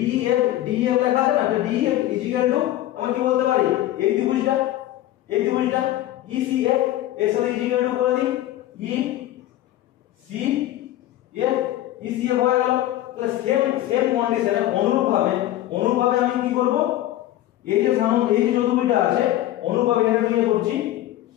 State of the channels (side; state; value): right; quieter; 14.3 dB